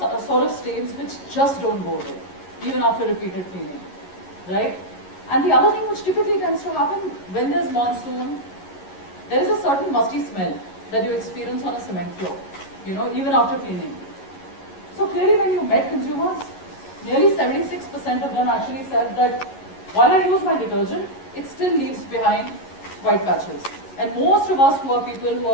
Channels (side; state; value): right; late; 11 ms